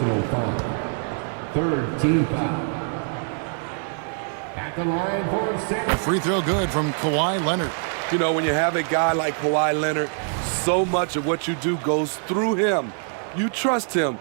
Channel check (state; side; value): silent; left; 55 dB below the other